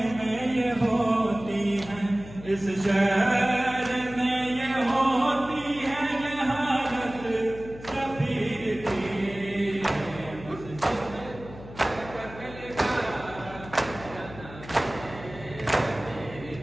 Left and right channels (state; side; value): noise; left; hum, 15 dB below the sound